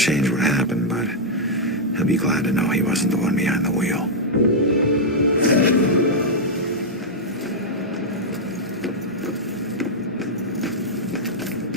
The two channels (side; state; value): both; normal; correlation -0.06